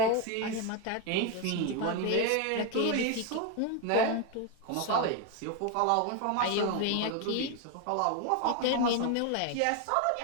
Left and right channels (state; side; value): different; both; correlation 0.02